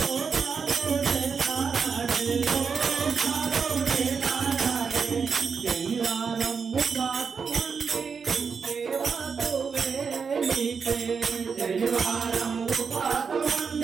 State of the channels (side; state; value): left; quieter; 5.8 dB